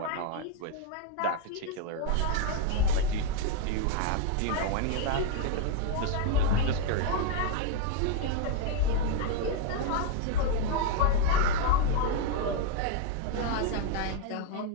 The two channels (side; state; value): both; different; correlation 0.00